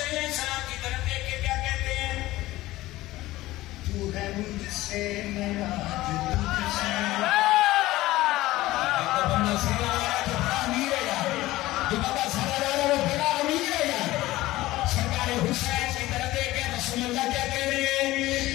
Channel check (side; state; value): right; quieter; 17.3 dB